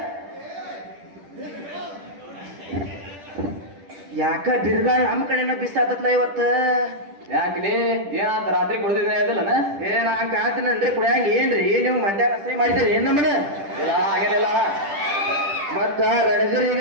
ಯಾಕ ಬಿರುಗಾಳ ನಮ್ಮ ಕಡೆನ ಬಿಸಾತತ್ಲ ಇವತ್ತ ಯಾಕ್ಲಿ ಏನಂತ ರಾತ್ರಿ ಕುಡ್ದಿದ್ದೀನಿ ಅದಲ್ಲನ ಏನ ಕಾತನಲ್ರಿ ಕುಡಿಯಂಗ ಏನ್ರಿ ನೀವು ಮಂಡ್ಯ ರಸ್ತೆ ಮಾಡಿದ್ರಿ ಏನ್ ನಮ್ಮನ ಹಾಗೇನಿಲ್ಲ ಮತ್ತ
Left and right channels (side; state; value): left; late; 10 ms